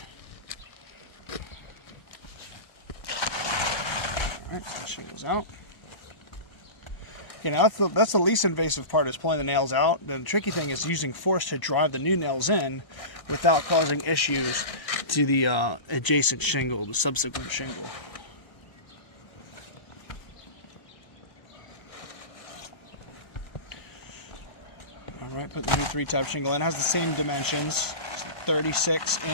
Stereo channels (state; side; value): late; right; 1.0 ms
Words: Alright, so shingles out. Okay, now that's the least invasive part, is pulling the nails out. The tricky thing is using force to drive the new nails in without causing issues to the adjacent shingle, the subsequent shingle. Alright, put the new 3-tab shingle in. It has the same dimensions. It's